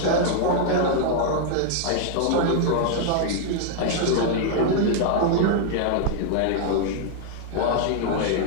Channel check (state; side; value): different; both; correlation -0.01